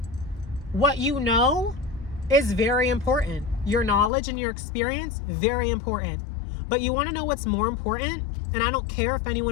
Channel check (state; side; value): drops out; right; at 4.1 s